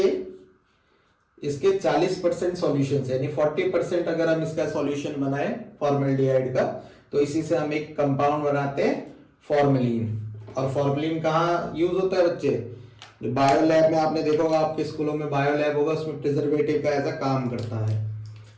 इसके 40% सॉल्यूशन, यानी 40% अगर हम इसका सॉल्यूशन बनाए फॉर्मल्डिहाइड का, तो इसी से हम एक कंपाउंड बनाते हैं फॉर्मेलिन। और फॉर्मेलिन कहाँ यूज होता है बच्चे, बायो लैब में आपने देखा होगा, आपके स्कूलों में बायो लैब होगा, उसमें प्रिजर्वेटिव का ऐसा काम करता है।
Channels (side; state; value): both; identical; correlation 1.00